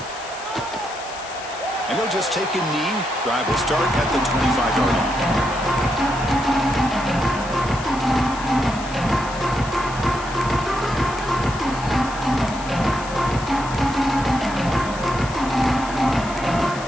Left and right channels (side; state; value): left; noise; hiss, 14 dB below the sound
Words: And he'll just take a knee. Drive will start at the 25-yard line.